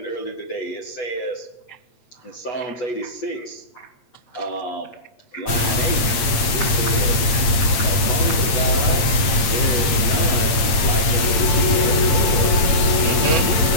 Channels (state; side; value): late; right; 8.6 ms